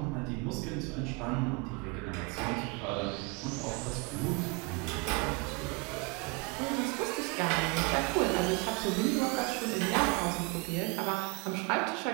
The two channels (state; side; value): quieter; left; 28.8 dB